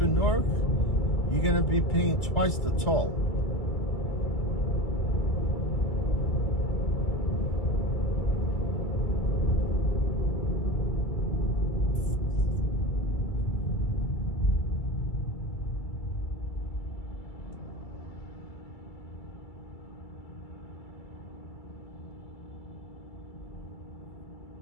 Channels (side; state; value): right; late; 2.3 ms